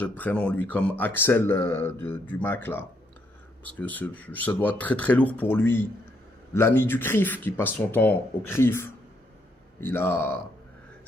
de prénom, lui, comme Axel du Mac, là. Parce que ça doit être très très lourd pour lui. L'ami du CRIF, qui passe son temps au CRIF,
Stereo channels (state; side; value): normal; both; correlation 0.74